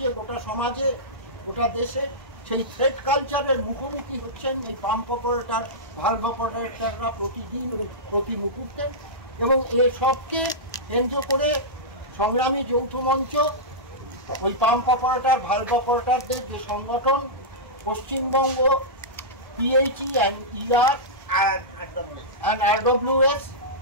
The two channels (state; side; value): normal; both; correlation -0.13